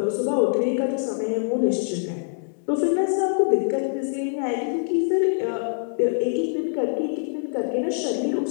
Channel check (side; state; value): right; silent; digital silence